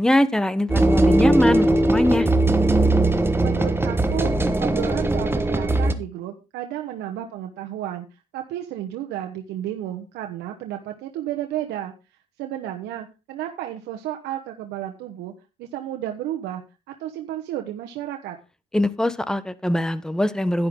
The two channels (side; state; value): both; normal; correlation 0.85